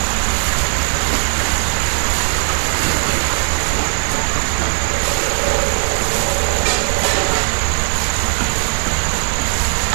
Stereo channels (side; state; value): left; silent; digital silence